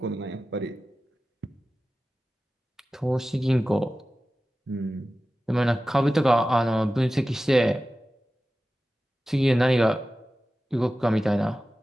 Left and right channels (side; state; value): both; normal; correlation 0.95